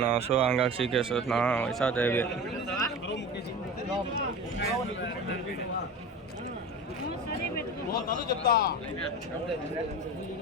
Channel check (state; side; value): normal; both; correlation 0.31